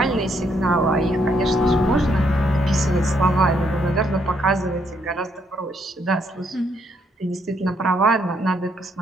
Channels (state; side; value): normal; both; correlation 0.73